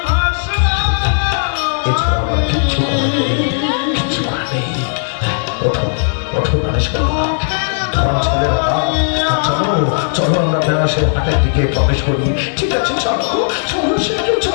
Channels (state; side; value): silent; right; 64 dB below the other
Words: ভাষা এছাড়া আমার কিচ্ছু করার নেই, কিচ্ছু করার নেই। ওঠো ওঠো গণেশ বাবা, ধরো ছেলের হাত। চলো চলো আমরা বেনাসের হাটের দিকে প্রবেশ করি। ঠিক আছে চলো চলো সেটা